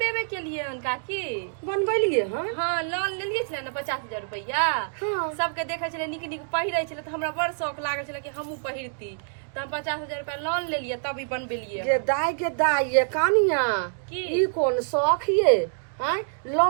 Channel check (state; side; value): silent; left; digital silence